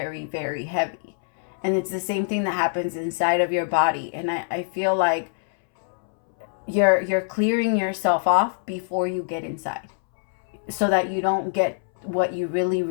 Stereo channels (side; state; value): right; silent; 62 dB below the other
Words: very heavy. And it's the same thing that happens inside of your body. And I feel like you're clearing yourself off before you get inside, so that you don't get what you really,